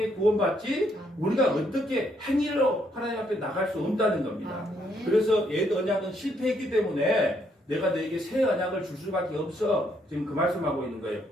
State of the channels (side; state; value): both; normal; correlation 0.72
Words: 구원받지 우리가 어떻게 행위로 하나님 앞에 나갈 수 없다는 겁니다. 그래서 옛 언약은 실패했기 때문에 내가 너에게 새 언약을 줄 수밖에 없어. 지금 그 말씀하고 있는 거예요.